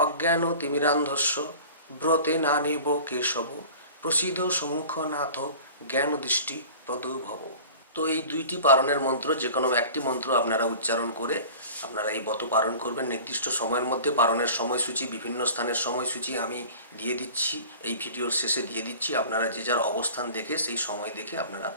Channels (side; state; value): both; inverted; correlation -0.41